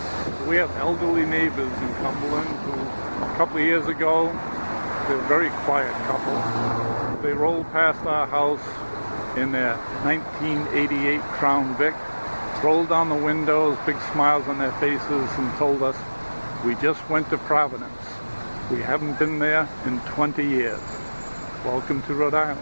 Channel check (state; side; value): inverted; both; correlation -1.00